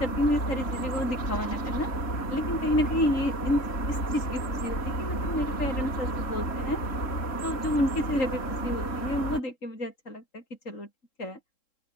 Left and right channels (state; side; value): late; right; 3.7 ms